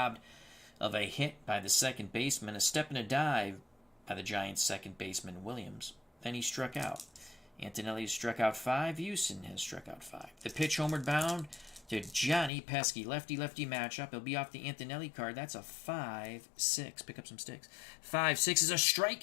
of a hit by the second baseman. A step and a dive by the Giants' second baseman, Williams. Then he struck out. Antonelli has struck out 5. Houston has struck out 5. The pitch homeward bound to Johnny Pesky. Lefty-lefty matchup. He'll be off the Antonelli card. That's a 5-6. Pick up some sticks. 5-6 is a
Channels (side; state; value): right; drops out; at 12.5 s